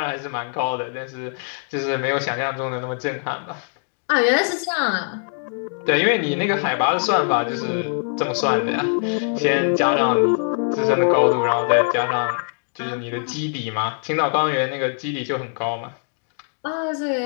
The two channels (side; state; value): right; silent; 56 dB below the other